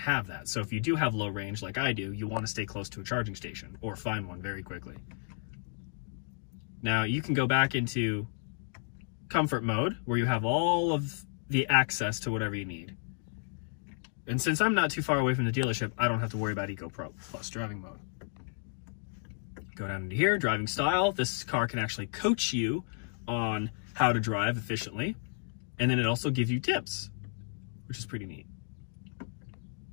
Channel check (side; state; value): right; silent; digital silence